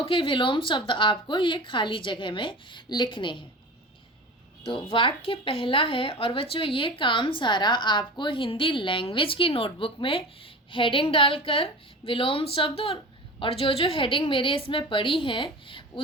के विलोम शब्द आपको ये खाली जगह में लिखने हैं। तो वाक्य पहला है, और बच्चों ये काम सारा आपको हिंदी लैंग्वेज की नोटबुक में हेडिंग डालकर विलोम शब्द और जो जो हेडिंग मेरे इसमें पड़ी हैं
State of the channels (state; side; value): normal; both; correlation 0.33